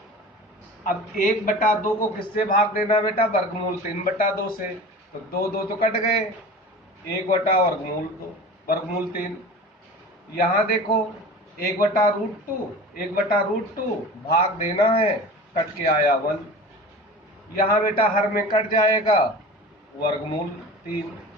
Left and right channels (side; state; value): both; normal; correlation 0.36